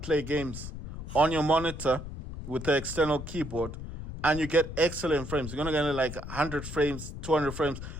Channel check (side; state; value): left; noise; rumble, 9 dB below the sound